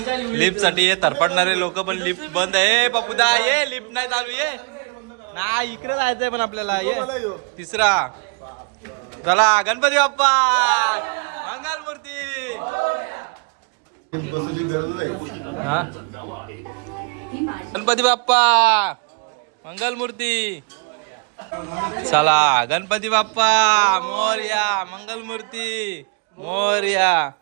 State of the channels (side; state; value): left; quieter; 34.4 dB